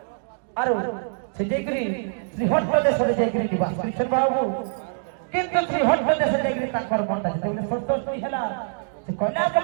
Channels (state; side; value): silent; left; digital silence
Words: ଆରୁ ସେ ଯାଇକରି ଶ୍ରୀହଟ୍ଟ ଦେଶରେ ଯାଇକରି ନିବାସ କରିଛନ୍ତି ବାବୁ କିନ୍ତୁ ଶ୍ରୀହଟ୍ଟ ଦେଶରେ ଯାଇକରି ତାଙ୍କର ମନଟା ଯେତେବେଳେ ସନ୍ତୋଷୀ ହେଲା ସେ କୈଳାସ